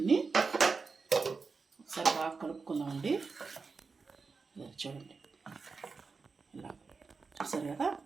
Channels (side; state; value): left; quieter; 4.6 dB